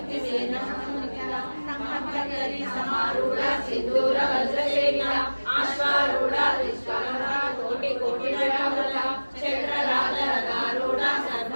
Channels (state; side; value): inverted; both; correlation -1.00